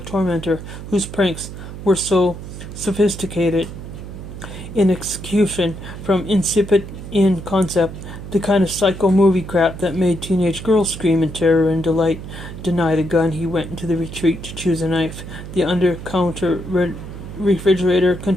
whose pranks were so sophisticated in execution, from insipid in concept, the kind of psycho movie crap that made teenage girls scream in terror and delight. Denied a gun, he went into the retreat to choose a knife. The under-counter refrigerator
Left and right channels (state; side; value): noise; right; hum, 11 dB below the sound